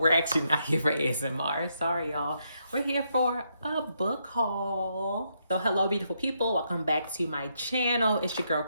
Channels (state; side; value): inverted; both; correlation -0.78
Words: actually not here for ASMR. Sorry, y'all. We're here for a book haul. So hello, beautiful people. Welcome back to my channel. It's your girl,